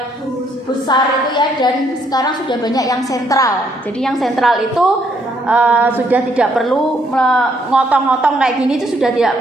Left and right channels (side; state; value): both; normal; correlation 0.70